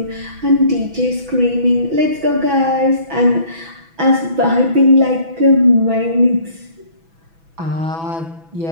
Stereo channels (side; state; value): left; late; 6.1 ms